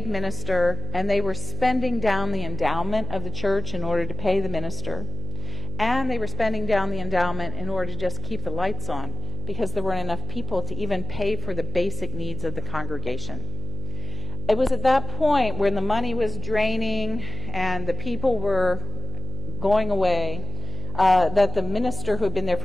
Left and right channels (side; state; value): right; noise; hum, 6 dB below the sound